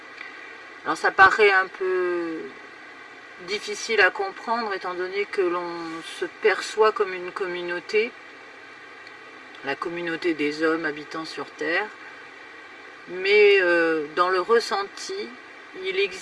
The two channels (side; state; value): both; identical; correlation 1.00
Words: Alors ça paraît un peu difficile à comprendre étant donné que l'on se perçoit comme une communauté, la communauté des hommes habitant sur Terre, mais dans le ressenti, il